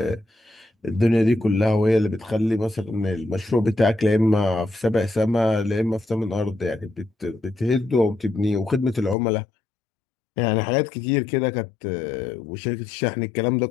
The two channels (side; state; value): right; drops out; at 9.2 s